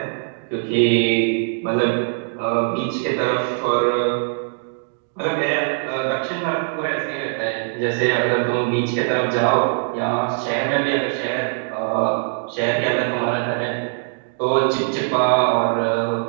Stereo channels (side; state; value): left; silent; digital silence